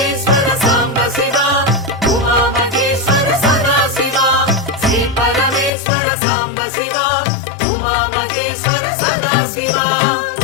సాంబ శివ ఉమామహేశ్వర సదాశివ శ్రీ పరమేశ్వర సాంబ శివ ఉమామహేశ్వర సదాశివ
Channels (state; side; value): drops out; right; at 5.7 s